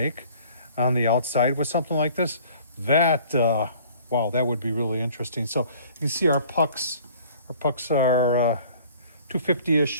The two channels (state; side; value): inverted; both; correlation -0.52